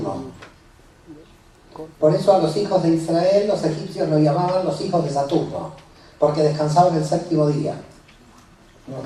Por eso a los hijos de Israel, los egipcios lo llamaban los hijos de Saturno, porque descansaban el séptimo día.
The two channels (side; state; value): both; identical; correlation 1.00